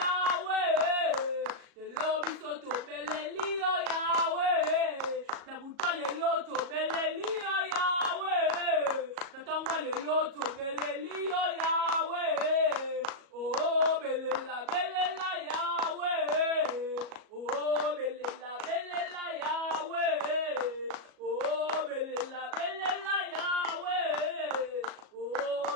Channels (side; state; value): left; late; 37 ms